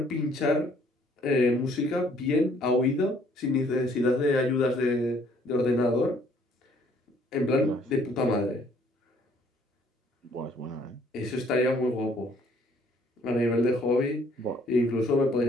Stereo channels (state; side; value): normal; both; correlation 0.62